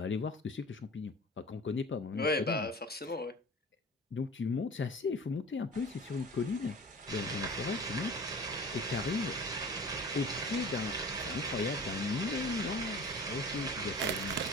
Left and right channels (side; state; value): both; normal; correlation 0.40